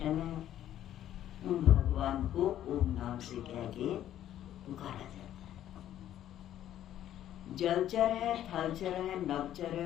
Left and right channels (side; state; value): right; quieter; 11.8 dB